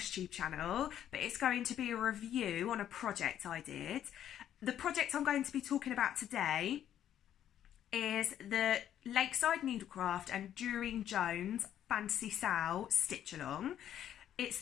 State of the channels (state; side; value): quieter; right; 10.7 dB